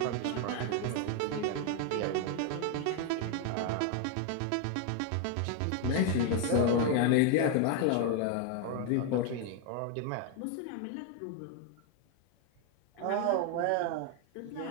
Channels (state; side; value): different; both; correlation 0.01